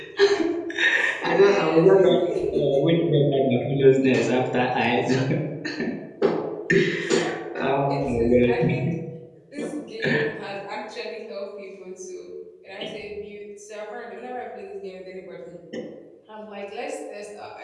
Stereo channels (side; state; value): both; identical; correlation 1.00